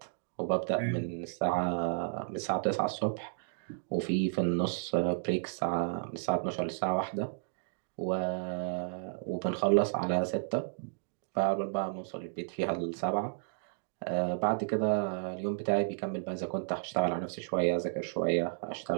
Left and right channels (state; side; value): silent; left; digital silence